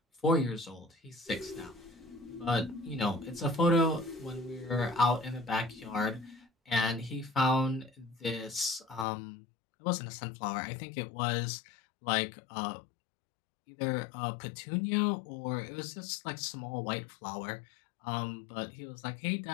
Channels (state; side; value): drops out; right; at 9.1 s